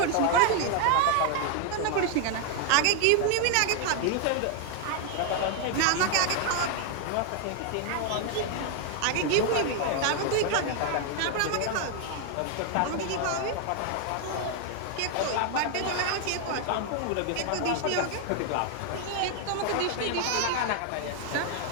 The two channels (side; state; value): both; different; correlation 0.00